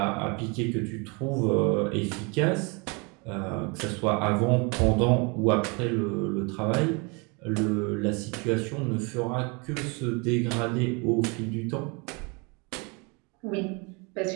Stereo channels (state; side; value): quieter; left; 30.6 dB